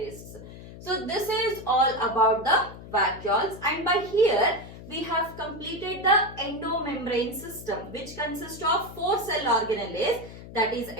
So this is all about the vacuoles, and by here we have completed the endomembrane system, which consists of 4 cell organelles, that is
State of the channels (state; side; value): noise; left; hum, 15 dB below the sound